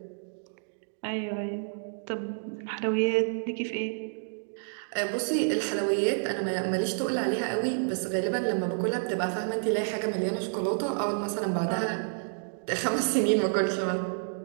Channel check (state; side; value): silent; left; digital silence